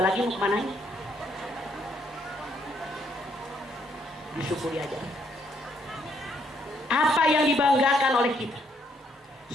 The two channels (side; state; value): both; normal; correlation 0.71